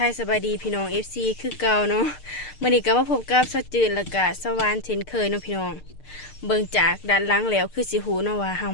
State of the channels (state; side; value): late; right; 6.6 ms